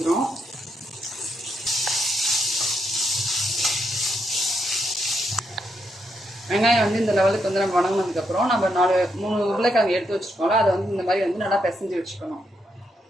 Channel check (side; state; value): both; normal; correlation 0.79